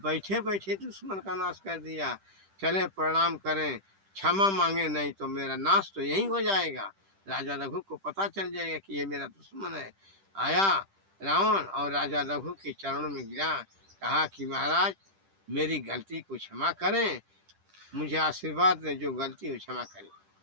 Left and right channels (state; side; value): late; left; 10 ms